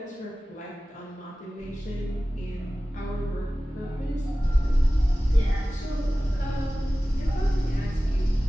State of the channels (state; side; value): normal; both; correlation 0.97